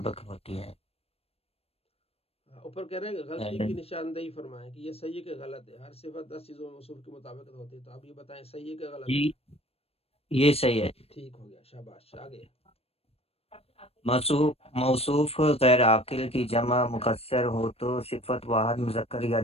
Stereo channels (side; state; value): right; late; 0.29 ms